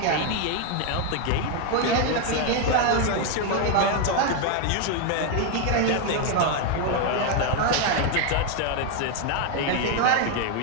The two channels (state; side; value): different; both; correlation 0.01